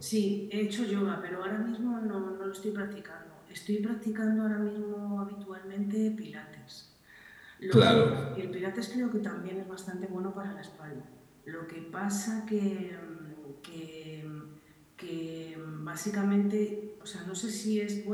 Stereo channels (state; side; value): identical; both; correlation 1.00